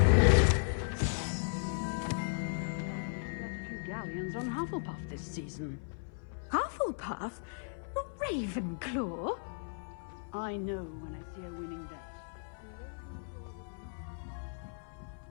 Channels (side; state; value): right; silent; 54 dB below the other